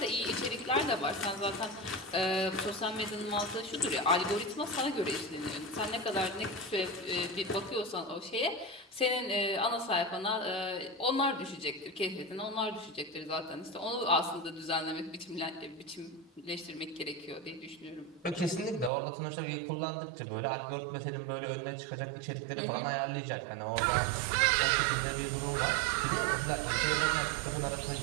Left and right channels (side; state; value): left; drops out; at 18.9 s